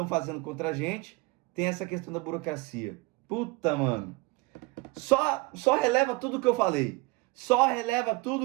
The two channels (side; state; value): left; quieter; 23.6 dB